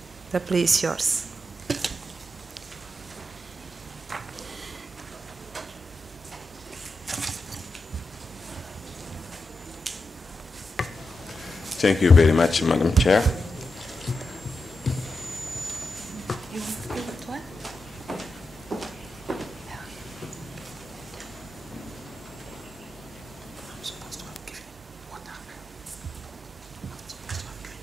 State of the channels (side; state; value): both; normal; correlation 0.88